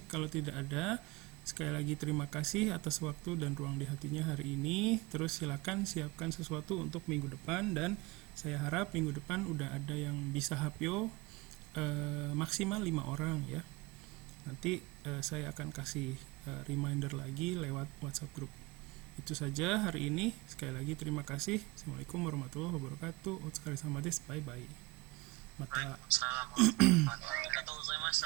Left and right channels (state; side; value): quieter; left; 23.3 dB